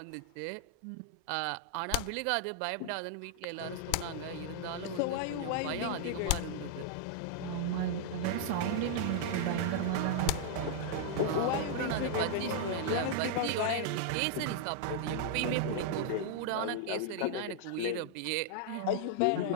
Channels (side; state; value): both; different; correlation -0.01